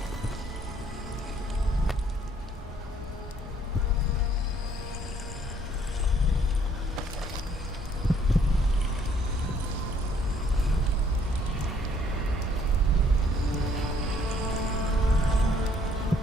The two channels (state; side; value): normal; both; correlation 0.64